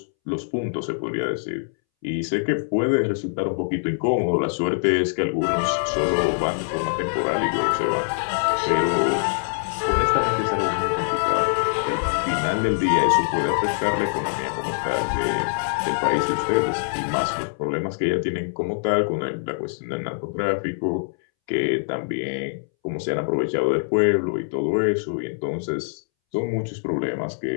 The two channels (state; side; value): silent; right; 63 dB below the other